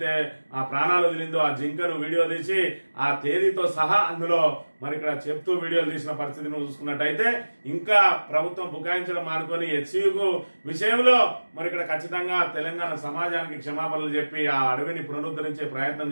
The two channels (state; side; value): inverted; both; correlation -1.00